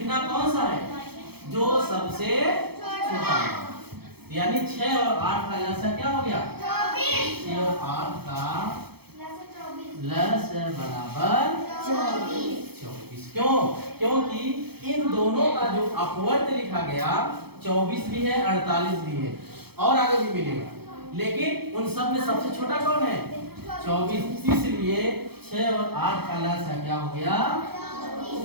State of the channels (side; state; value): left; late; 0.96 ms